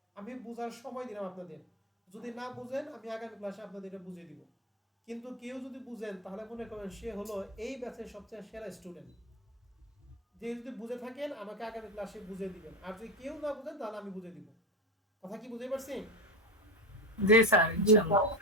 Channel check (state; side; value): normal; both; correlation 0.19